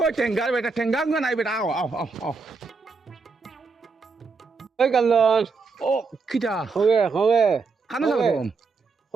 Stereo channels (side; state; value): left; quieter; 4.5 dB